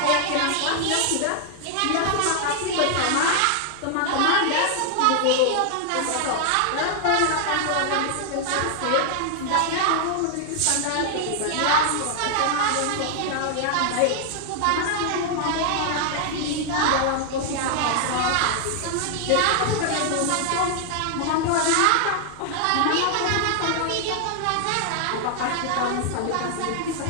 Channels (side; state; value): both; different; correlation 0.00